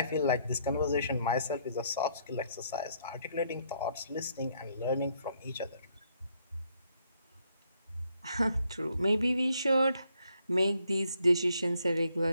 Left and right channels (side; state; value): both; inverted; correlation -0.71